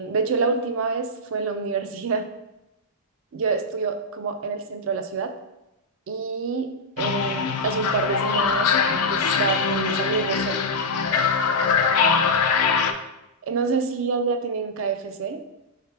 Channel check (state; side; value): normal; both; correlation -0.08